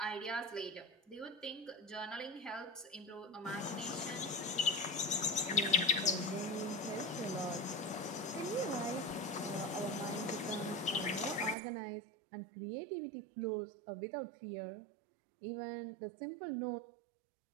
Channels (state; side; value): drops out; left; at 11.6 s